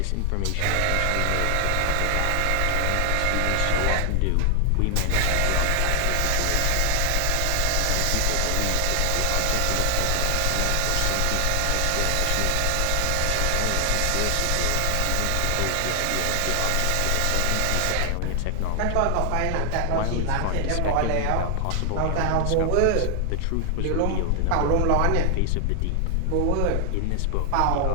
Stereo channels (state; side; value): different; both; correlation 0.00